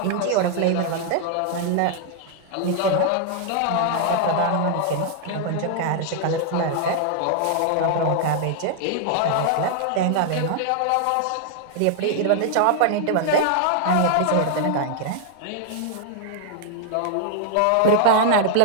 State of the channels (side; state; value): both; different; correlation 0.00